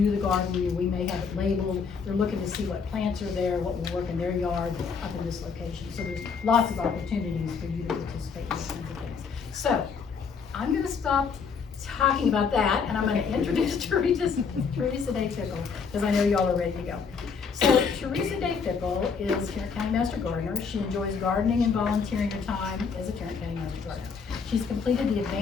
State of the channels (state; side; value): quieter; right; 5.7 dB